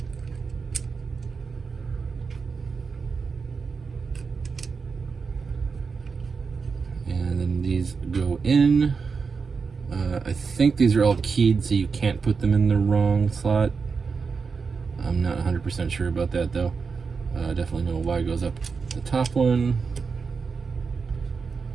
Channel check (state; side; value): quieter; left; 5.1 dB